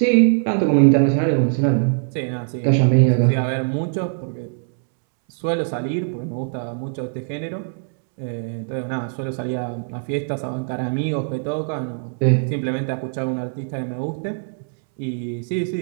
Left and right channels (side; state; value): left; silent; 64 dB below the other